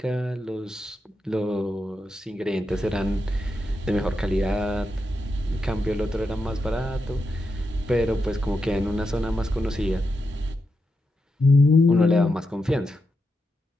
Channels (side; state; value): both; normal; correlation 0.86